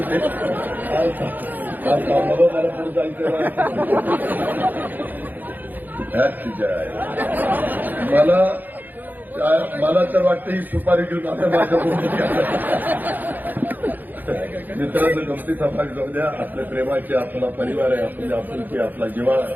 जायचं. मला तर वाटतं ही सुपारी घेऊन आता माझ्या मित्रांनो, गमती समाज जाऊ द्या. आपल्या प्रेमाचे, आपला परिवार आहे, आपली आपुलकी, आपला जिव्हाळा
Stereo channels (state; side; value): late; left; 0.086 ms